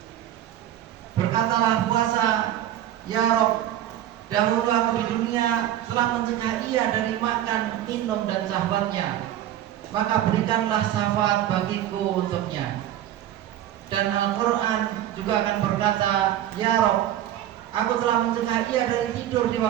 Berkatalah puasa, "Ya Rob, dahulu aku di dunia telah mencegah ia dari makan, minum dan sahabatnya, maka berikanlah syafaat bagiku untuknya." Dan Al-Quran juga akan berkata, "Ya Rob, aku telah mencegah ia dari tidur di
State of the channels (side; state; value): left; quieter; 12.1 dB